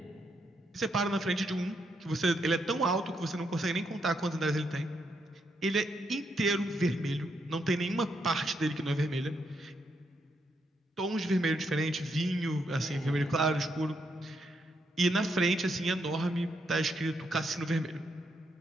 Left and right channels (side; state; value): both; normal; correlation 0.78